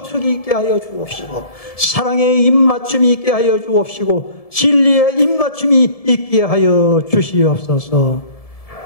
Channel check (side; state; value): right; late; 1.7 ms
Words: 있게 하여 주옵시고 사랑의 입맞춤이 있게 하여 주옵시고 진리의 입맞춤이 있게 하여 주시옵소서.